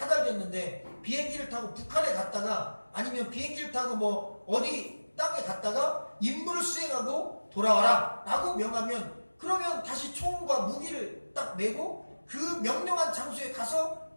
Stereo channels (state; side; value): inverted; both; correlation -1.00